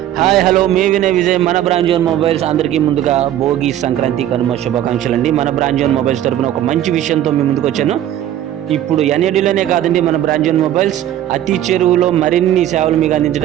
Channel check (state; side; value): quieter; left; 11.9 dB